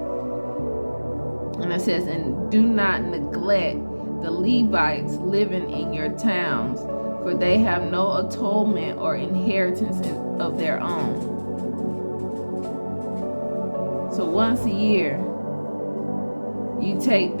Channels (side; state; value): both; inverted; correlation -1.00